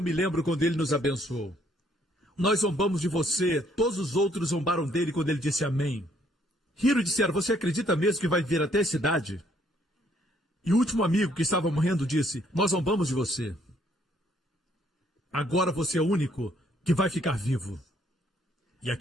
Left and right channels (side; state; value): both; normal; correlation 0.66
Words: me lembro quando ele nos abençoou. Nós zombamos de você, todos os outros zombaram dele quando ele disse amém. Riram e disseram, você acredita mesmo que vai vir até a cidade? E o último amigo que estava morrendo disse, nós zombamos de você. Agora você é o único que vai ficar vivo. E